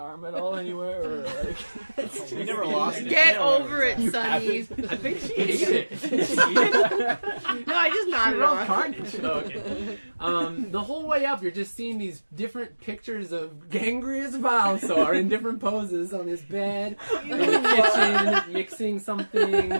at all anywore? Or like, We never lost it. Get Yeah, over it, Sunny. I think she ate it. Did she eat it? No, I just She nodded rolled off. carnage. Oh, okay. The whole way up, you're just seeing these different pictures of Gangrius Vilesaur in different poses on his bed, in the kitchen, mixing something.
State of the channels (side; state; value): both; inverted; correlation -1.00